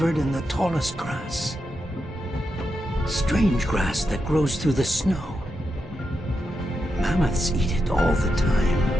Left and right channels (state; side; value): normal; both; correlation 0.86